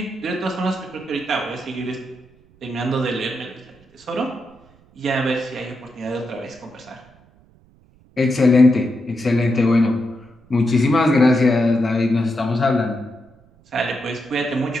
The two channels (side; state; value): right; noise; rumble, 29 dB below the sound